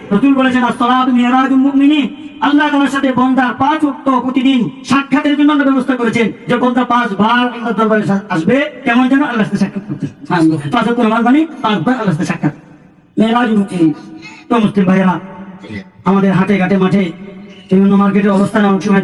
রাসূল বলেছেন as-সালাতু মিরাজুল মুমিনিন, আল্লাহ তাআলার সাথে বান্দা 5 ওয়াক্ত প্রতিদিন সাক্ষাতের জন্য আমরা ব্যবস্থা করেছেন, যে বান্দা 5 বার আল্লাহর দরবারে আসবে, কেমন যেন আল্লাহর সাথে সাক্ষাৎ করতে। 5 ওয়াক্ত নামাজ মানে 5 বার আল্লাহর সাথে সাক্ষাৎ, মিরাজুল মুমিনিন। তো মুসলিম ভাইয়েরা, আমাদের হাটে ঘাটে মাঠে বিভিন্ন মার্কেটের অবস্থানে অনেক সময়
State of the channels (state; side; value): identical; both; correlation 1.00